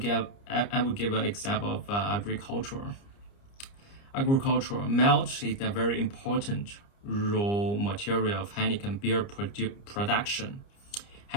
an example of agriculture. Agricultural malt is a very important raw material of Heineken beer production.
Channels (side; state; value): right; late; 30 ms